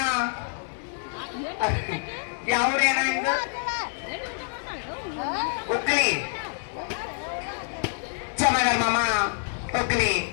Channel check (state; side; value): silent; right; 60 dB below the other